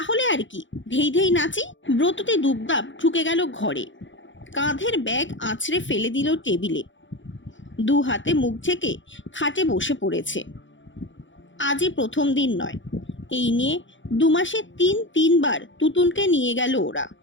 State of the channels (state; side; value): late; right; 0.55 ms